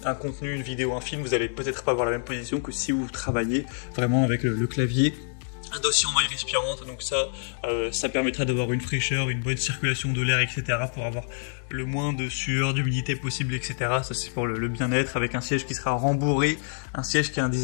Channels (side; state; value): right; silent; 60 dB below the other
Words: un contenu, une vidéo, un film, vous allez peut-être pas avoir la même position que si vous travaillez vraiment avec le clavier. Un dossier en maille respirante, donc ça permettra d'avoir une fraîcheur, une bonne circulation de l'air, etc. pour avoir le moins de sueur, d'humidité possible, etc. Ça c'est pour le bien-être, avec un siège qui sera rembourré, un siège qui a un